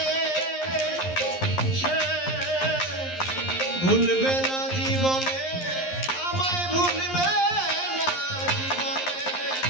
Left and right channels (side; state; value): right; late; 11 ms